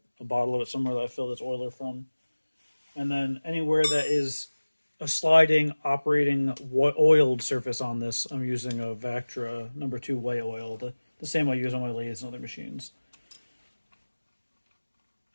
bottle of it somewhere that I fill this oiler from. And then anywhere that is a sliding, operating oiled surface on this, I'm using a Vactra #2 white oil, the same I use on my lathes and other machines.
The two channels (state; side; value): inverted; both; correlation -1.00